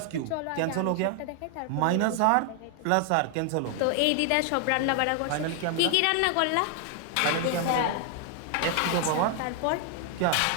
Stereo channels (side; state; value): both; different; correlation 0.00